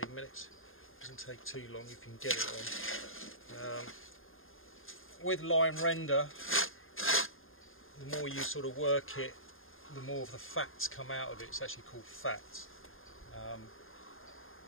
minutes. Doesn't take too long if you can get it on. With line render, the more you sort of work it, the more of the fats come out of it. It's actually called fats.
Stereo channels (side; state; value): right; late; 0.60 ms